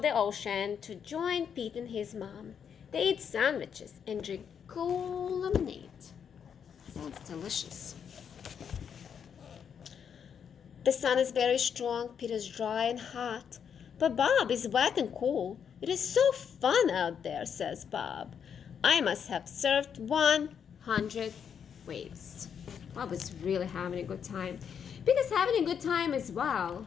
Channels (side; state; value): right; quieter; 7.6 dB